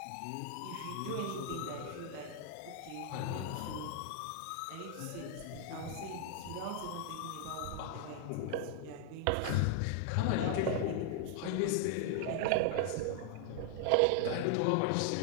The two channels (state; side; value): different; both; correlation 0.00